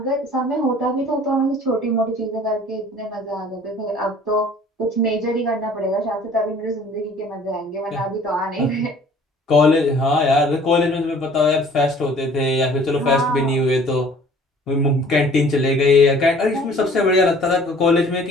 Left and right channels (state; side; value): normal; both; correlation 0.52